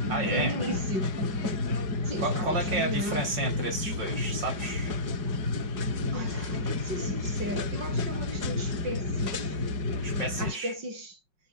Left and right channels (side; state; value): left; late; 5.3 ms